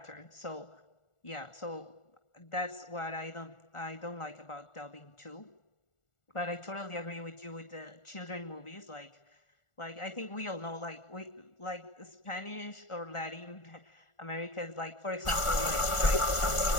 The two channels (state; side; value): late; right; 1.4 ms